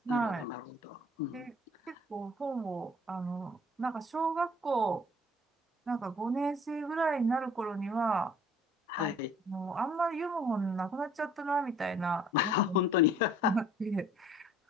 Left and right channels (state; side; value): normal; both; correlation 0.55